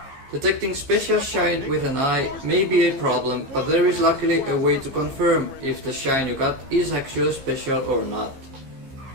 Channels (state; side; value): late; left; 15 ms